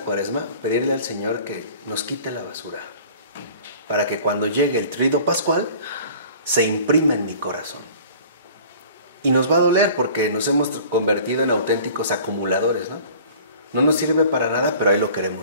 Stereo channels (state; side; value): inverted; both; correlation -0.47